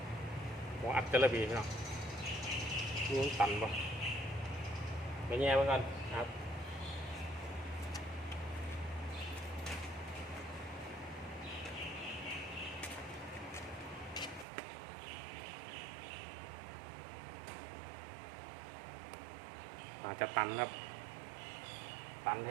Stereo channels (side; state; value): left; drops out; at 14.5 s